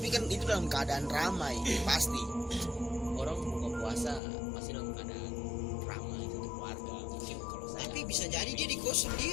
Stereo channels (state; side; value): drops out; right; at 4.2 s